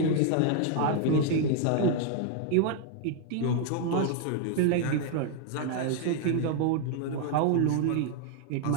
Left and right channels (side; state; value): both; different; correlation 0.00